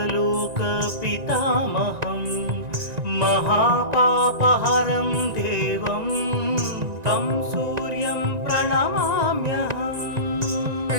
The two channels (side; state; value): left; late; 1.9 ms